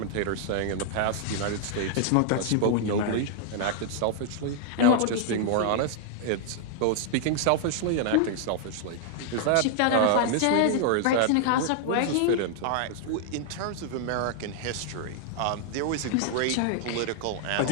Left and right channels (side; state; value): both; different; correlation -0.01